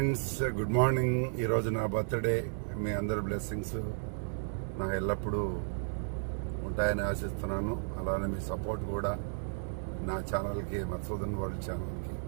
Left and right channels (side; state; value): left; silent; digital silence